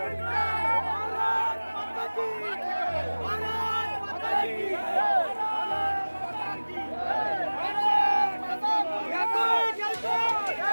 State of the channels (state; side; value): inverted; both; correlation -1.00